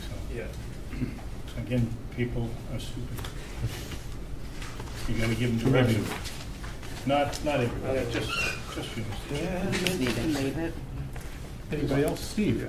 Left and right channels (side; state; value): both; identical; correlation 1.00